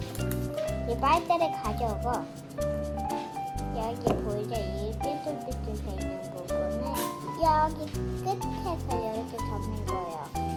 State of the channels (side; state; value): both; identical; correlation 1.00